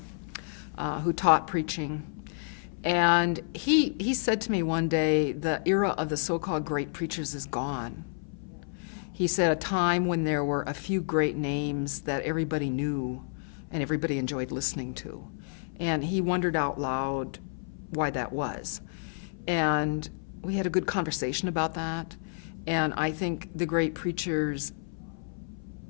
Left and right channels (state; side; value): silent; right; 57 dB below the other